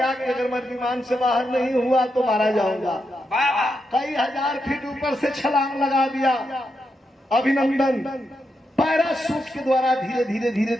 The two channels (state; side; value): normal; both; correlation 0.85